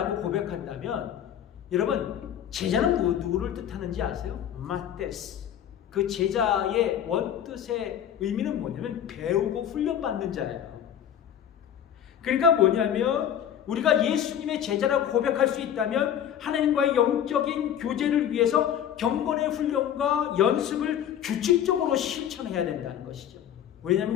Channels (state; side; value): quieter; right; 9.8 dB